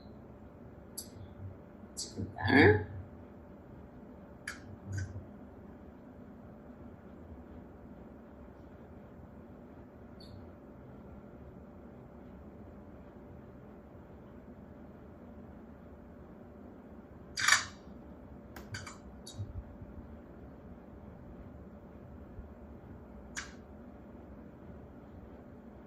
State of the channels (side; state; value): both; identical; correlation 1.00